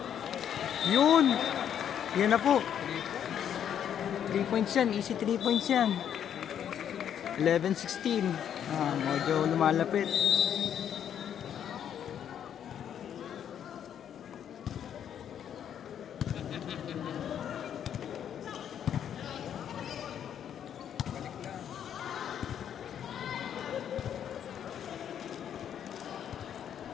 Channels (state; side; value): quieter; right; 9.2 dB